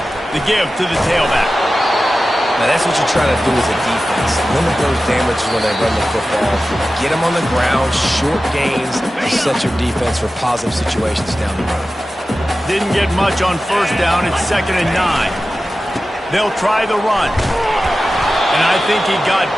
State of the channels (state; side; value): normal; both; correlation 0.94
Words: The give to the tailback. Now, that's what you're trying to do as a defense. Limit those damages when they run the football. Get them on the ground, short gains, set your defense for positive situations down the road. Didn't get much on first down. It's 2nd and 9. They'll try the run. And I think he got